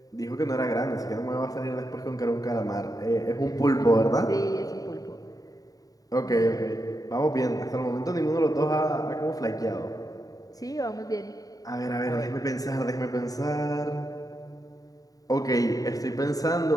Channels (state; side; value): late; right; 0.18 ms